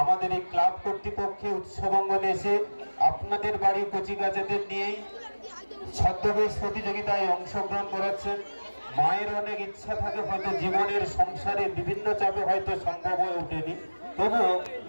আমাদের এই ক্লাব কর্তৃপক্ষে উৎসব অঙ্গনে এসে আপনাদের বাড়ির কচিকাচাদের নিয়েই ছদ্মবেশ প্রতিযোগিতায় অংশগ্রহণ করাচ্ছেন। মায়ের অনেক ইচ্ছা থাকে, হয়তো জীবনের সংসারে বিভিন্ন চাপে হয়তো সম্ভব হয়ে ওঠেনি, তবুও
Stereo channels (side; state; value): both; inverted; correlation -1.00